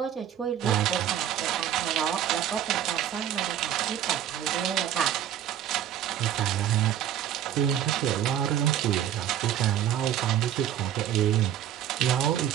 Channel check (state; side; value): quieter; left; 10.5 dB